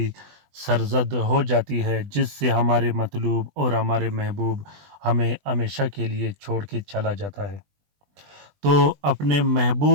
سرزد ہو جاتی ہے جس سے ہمارے مطلوب اور ہمارے محبوب ہمیں ہمیشہ کے لیے چھوڑ کے چلا جاتا ہے۔ تو اپنے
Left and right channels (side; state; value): left; late; 20 ms